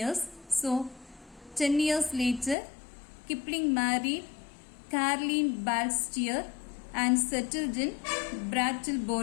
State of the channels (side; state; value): right; drops out; at 2.6 s